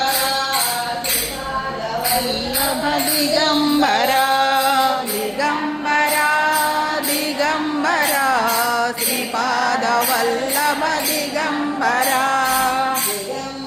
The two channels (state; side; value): identical; both; correlation 1.00